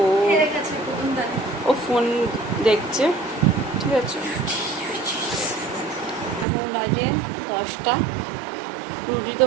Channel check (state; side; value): drops out; left; at 6.5 s